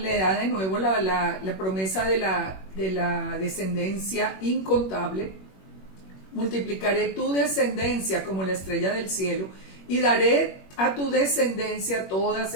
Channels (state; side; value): late; right; 21 ms